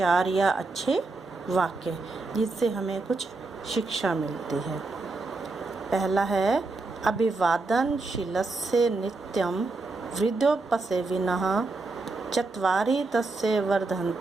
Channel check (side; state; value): left; quieter; 3.6 dB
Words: या अच्छे वाक्य जिससे हमें कुछ शिक्षा मिलती है। पहला है अभिवादनशीलस्य नित्यं वृद्धोपसेविनः चत्वारि तस्य